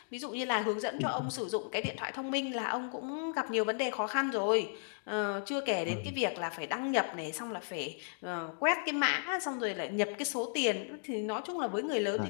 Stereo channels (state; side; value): silent; right; digital silence